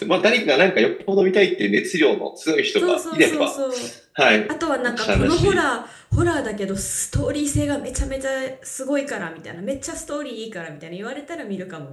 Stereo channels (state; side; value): identical; both; correlation 1.00